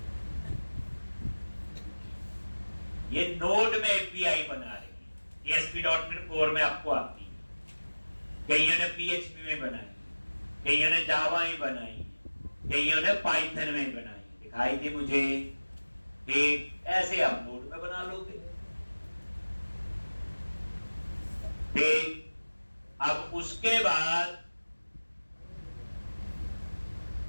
ये नोड में एपीआई बना रही है, ASP.NET Core में आपको आती है, कईयों ने PHP में बनाई, कईयों ने जावा में बनाई, कईयों ने पाइथन में बनाई, दिखाई थी मुझे, ठीक। ऐसे आप नोड में बना लोगे, ठीक। अब उसके बाद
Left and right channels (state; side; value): inverted; both; correlation -1.00